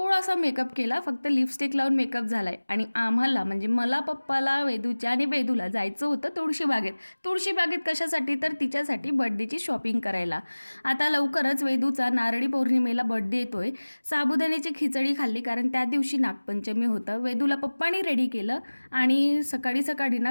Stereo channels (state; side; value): inverted; both; correlation -1.00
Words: मेकअप केला, फक्त लिपस्टिक लावून मेकअप झालाय आणि आम्हाला म्हणजे मला, पप्पाला, वेदूच्या आणि वेदूला जायचं होतं तुळशीबागेत। तुळशीबागेत कशासाठी? तर तिच्यासाठी बर्थडेची शॉपिंग करायला। आता लवकरच वेदूचा नारळी पौर्णिमेला बर्थडे येतोय। साबुदाण्याची खिचडी खाल्ली कारण त्या दिवशी नागपंचमी होतं। वेदूला पप्पांनी रेडी केलं आणि सकाळी सकाळी